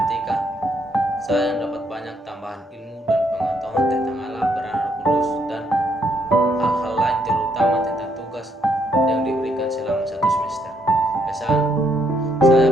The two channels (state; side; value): normal; both; correlation 0.72